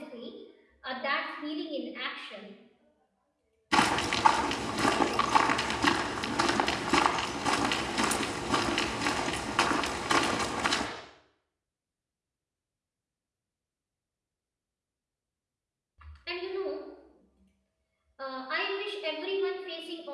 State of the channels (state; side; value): identical; both; correlation 1.00